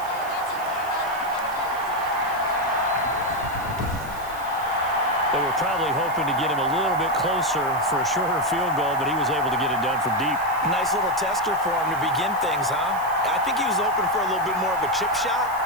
They were probably hoping to get him a little bit closer for a shorter field goal, but he was able to get it done from deep. Nice little tester for him to begin things, huh? I think he was open for a little bit more of a chip shot.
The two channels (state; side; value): noise; right; hiss, 18 dB below the sound